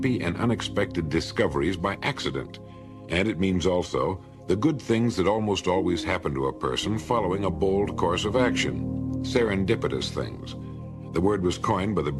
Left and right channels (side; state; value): both; identical; correlation 1.00